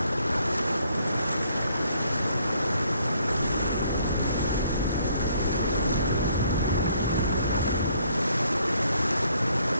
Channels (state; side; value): inverted; both; correlation -0.67